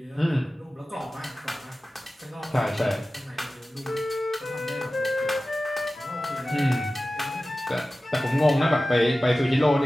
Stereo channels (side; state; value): both; normal; correlation 0.96